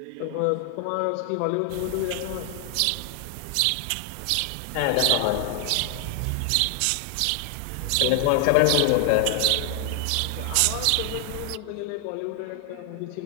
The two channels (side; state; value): both; different; correlation 0.00